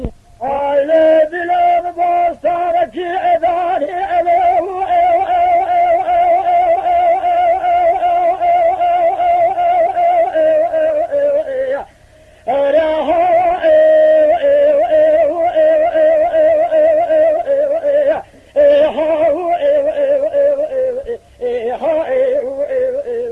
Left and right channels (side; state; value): both; identical; correlation 1.00